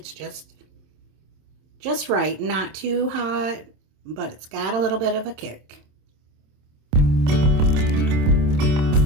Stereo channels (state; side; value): late; left; 27 ms